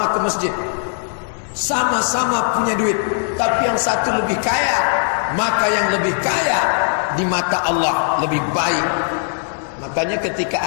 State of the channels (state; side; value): silent; right; 66 dB below the other